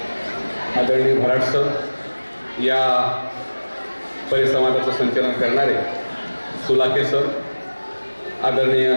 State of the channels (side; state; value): both; inverted; correlation -1.00